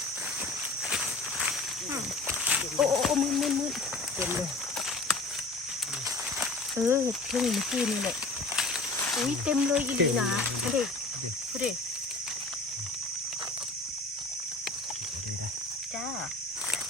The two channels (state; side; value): quieter; right; 3.1 dB